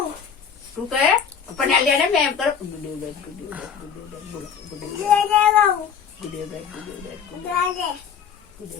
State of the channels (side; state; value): right; quieter; 7.3 dB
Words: તું કહે પણ આ લે ને મેં એમ કરો